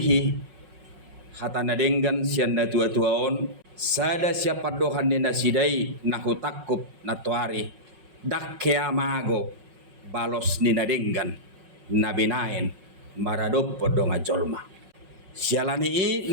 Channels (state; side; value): late; left; 5.4 ms